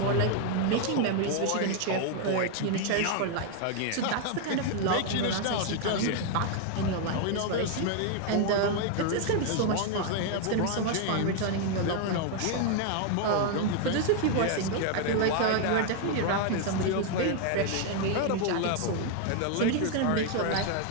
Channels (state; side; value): different; both; correlation 0.00